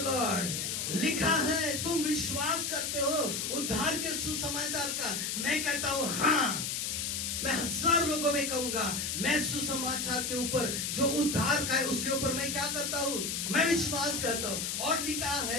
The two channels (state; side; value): noise; left; hiss, 2 dB below the sound